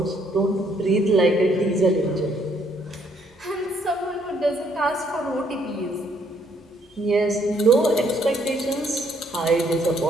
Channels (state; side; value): normal; both; correlation 0.68